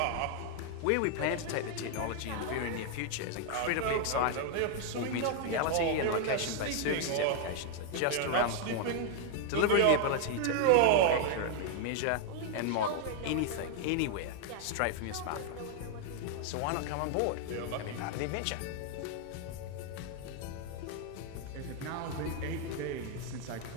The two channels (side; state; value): both; different; correlation 0.00